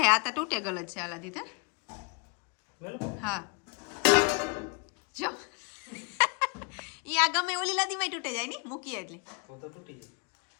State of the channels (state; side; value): quieter; right; 34.0 dB